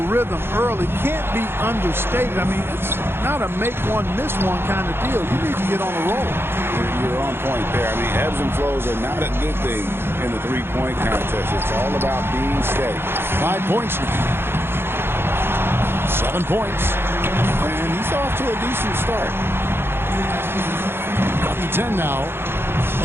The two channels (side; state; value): left; late; 0.11 ms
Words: rhythm early can't be understated. I mean, it's not a make one, miss one kind of deal. You need to get on a roll. You're on point there. I mean, ebbs and flows are not a good thing in the three-point contest. It's all about being steady. 5 points now. 7 points. And he's off to a decent start. Up to 10 now,